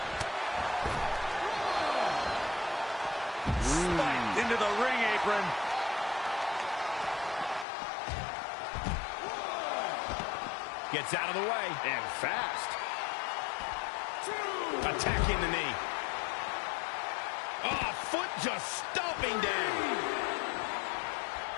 Spiked into the ring apron. Gets out of the way. And fast. Attacking the knee. Oh, foot just stomping down.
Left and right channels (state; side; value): drops out; right; at 7.7 s